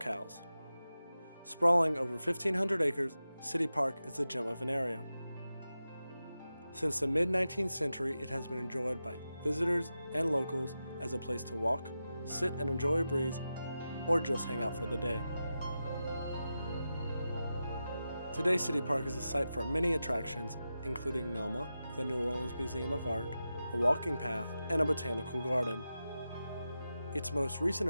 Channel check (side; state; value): both; inverted; correlation -0.91